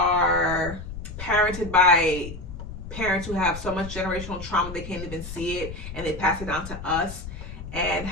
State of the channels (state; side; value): noise; left; rumble, 10 dB below the sound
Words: parented by parents who have so much generational trauma they can't even see it, and they pass it down to us. And